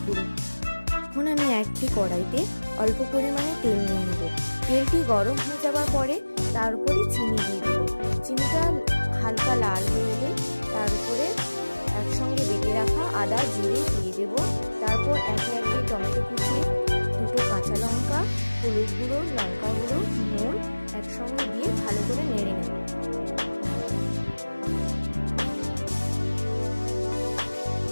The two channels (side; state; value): both; inverted; correlation -1.00